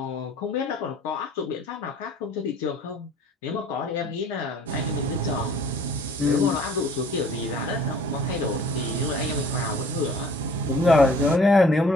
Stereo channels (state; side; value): normal; both; correlation 0.52